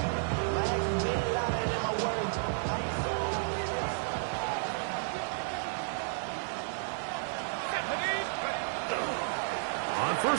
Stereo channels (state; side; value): silent; left; 56 dB below the other